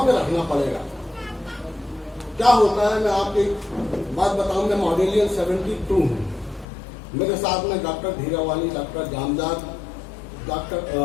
पे रखना पड़ेगा। क्या होता है, मैं आपको एक बात बताऊं, मैं मॉडेलियन 72 हूँ। मेरे साथ में डॉक्टर धीरावाली, डॉक्टर जामदार,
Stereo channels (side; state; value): right; drops out; at 6.7 s